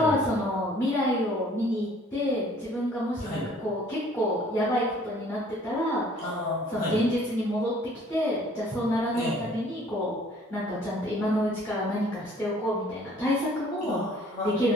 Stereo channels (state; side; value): normal; both; correlation 0.56